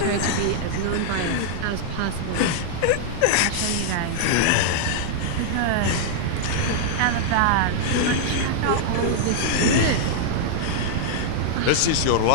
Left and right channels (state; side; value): different; both; correlation -0.01